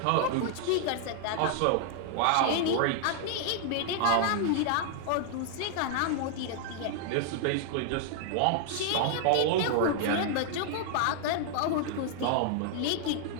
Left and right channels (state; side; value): different; both; correlation -0.01